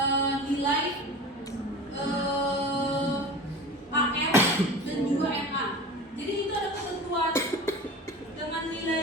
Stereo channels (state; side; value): normal; both; correlation 0.35